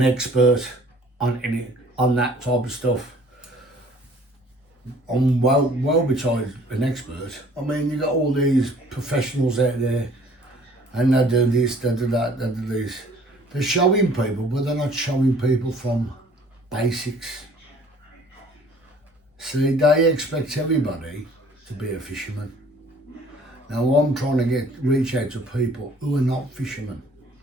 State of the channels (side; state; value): both; normal; correlation 0.54